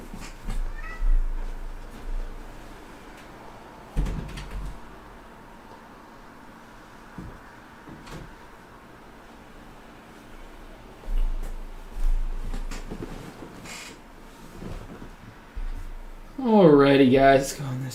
Alrighty, guys, let's go on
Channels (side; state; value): both; identical; correlation 1.00